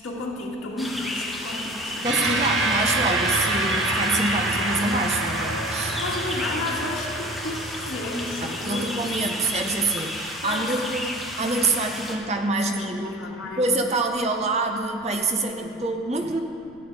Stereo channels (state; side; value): noise; left; rumble, 28 dB below the sound